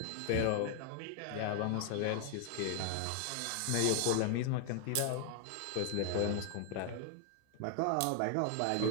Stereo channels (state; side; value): different; both; correlation 0.00